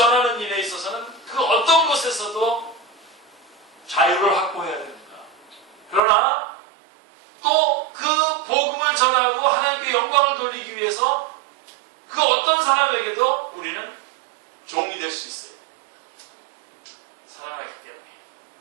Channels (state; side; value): drops out; left; at 6.0 s